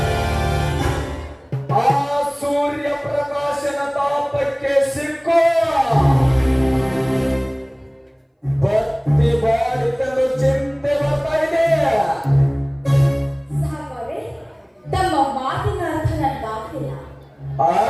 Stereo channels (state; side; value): identical; both; correlation 1.00